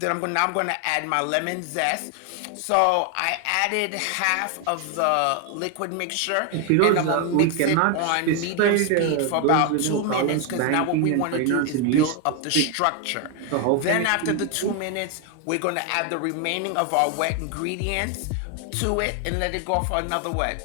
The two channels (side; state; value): both; different; correlation 0.01